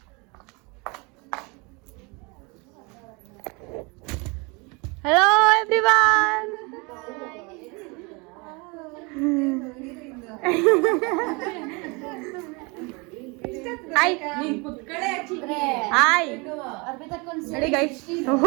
Hello everyone. ಹಾಯ್ ಹಾಯ್ ನೋಡಿ ಗೈಸ್.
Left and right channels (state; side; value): quieter; left; 29.0 dB